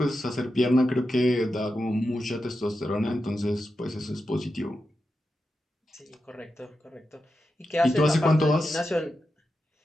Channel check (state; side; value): normal; both; correlation 0.89